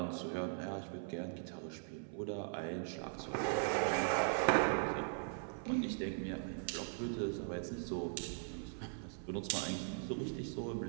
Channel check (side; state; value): left; silent; 51 dB below the other